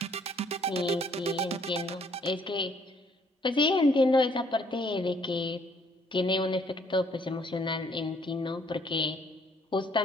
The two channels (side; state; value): both; normal; correlation 0.64